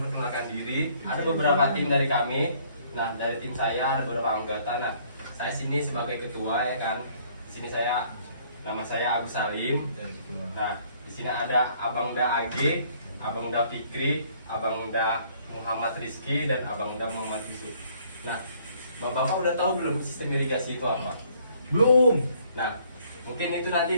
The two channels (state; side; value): inverted; both; correlation -0.62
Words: diri. Ada beberapa tim dari kami. Nah, dari tim saya ada beberapa anggota. Nah, saya sini sebagai ketua ya kan. Di sini nama saya Agus Salim. Nah, di sini ada Abang Da AG, Abang Da Fikri, Abang Da Muhammad Rizky, dan Abang Da Muhammad Yusuf. Nah, Bapak udah tahu belum sistem irigasi itu apa? Belum. Nah, mungkin itu